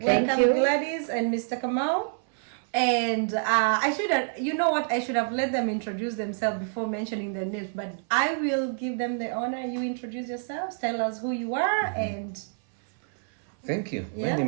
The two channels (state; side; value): silent; left; 59 dB below the other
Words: you. Gladys and Mr. Kamau. And I should have, you know what, I should have let them introduce themselves before mentioning their names, but I will give them the honor. You introduce yourselves, tell us who you are, and... Thank you. Yeah. My